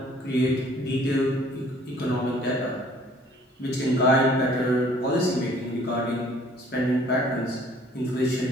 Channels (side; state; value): both; normal; correlation 0.56